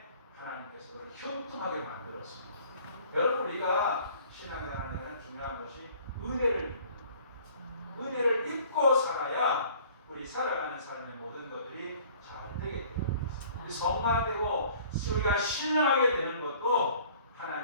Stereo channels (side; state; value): both; inverted; correlation -0.53